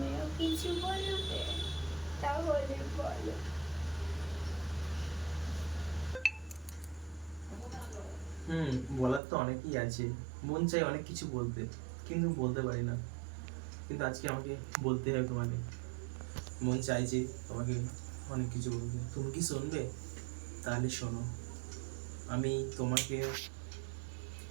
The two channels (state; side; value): drops out; left; at 9.2 s